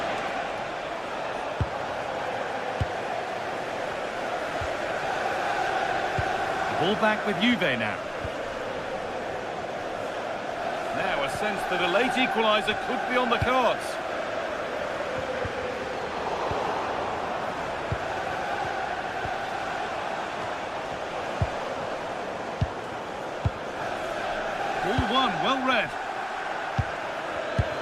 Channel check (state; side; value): identical; both; correlation 1.00